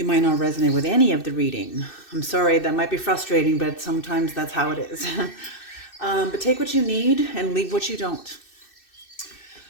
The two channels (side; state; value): right; late; 2.6 ms